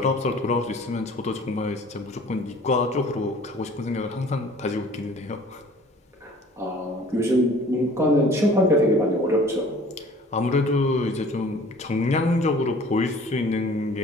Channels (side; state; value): both; normal; correlation 0.49